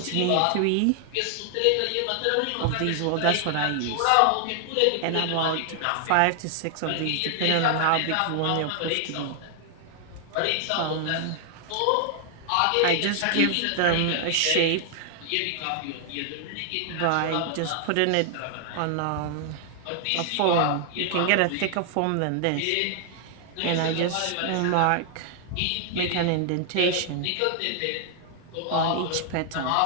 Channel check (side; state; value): both; different; correlation 0.00